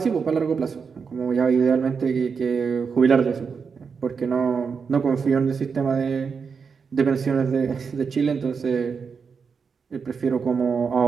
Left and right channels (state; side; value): quieter; left; 5.7 dB